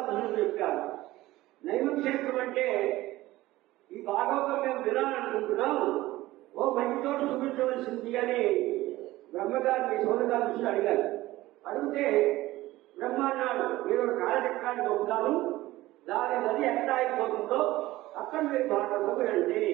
చెప్పారు. నైమక్షేత్రం అంటే ఈ భాగవతం మేము వినాలనుకుంటున్నాం, ఓ మంచి చోటు చూపించవలసింది అని బ్రహ్మగారిని సౌనకాదులు అడిగారు. అడిగితే బ్రహ్మ అన్నాడు, మీరు కాలచక్రాన్ని పంపుతాను, దాని నది ఎక్కడ అయిపోతుందో అక్కడ మీరు భాగవతం వినండి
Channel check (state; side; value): quieter; left; 17.4 dB